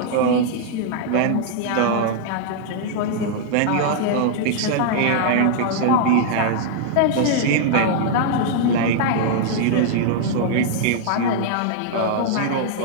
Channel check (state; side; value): different; both; correlation -0.01